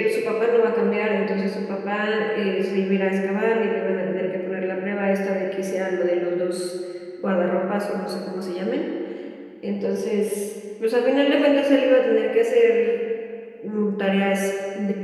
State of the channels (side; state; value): both; identical; correlation 1.00